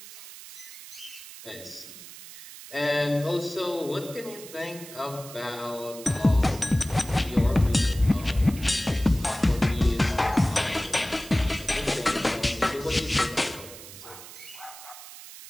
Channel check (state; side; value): noise; right; hiss, 15 dB below the sound